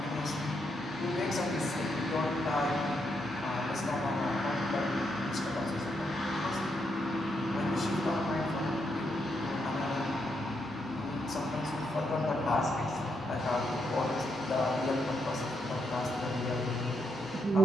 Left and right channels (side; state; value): both; normal; correlation 0.79